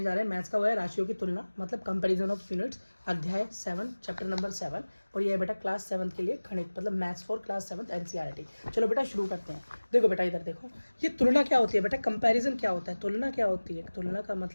जा रहे हैं मैथ्स का वो है राशियों की तुलना, मतलब कंपैरिजन ऑफ यूनिट्स, अध्याय 7 चैप्टर नंबर 7। और ये है बेटा क्लास 7 के लिए गणित, मतलब मैथ्स फॉर क्लास 7 एनसीईआरटी। चलो बेटा शुरू करते हैं। देखो बेटा इधर देखो, ये तुलना क्या होती है बेटा, कंपैरिजन क्या होता है, तुलना क्या होती है। तुलना का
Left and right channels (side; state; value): both; inverted; correlation -1.00